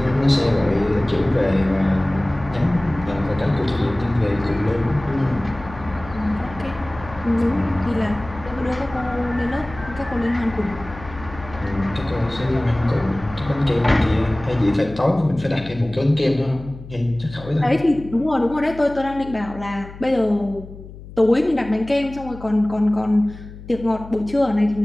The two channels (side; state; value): left; noise; hum, 15 dB below the sound